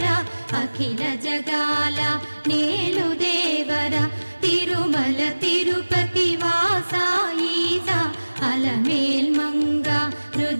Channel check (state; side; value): inverted; both; correlation -1.00